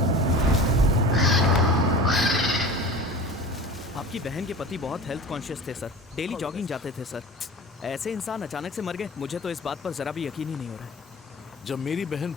आपकी बहन के पति बहुत हेल्थ कॉन्शियस थे सर, डेली जॉगिंग जाते थे सर। ऐसे इंसान अचानक से मर गए, मुझे तो इस बात पर जरा भी यकीन ही नहीं हो रहा है। जब मेरी बहन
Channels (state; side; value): normal; both; correlation 0.38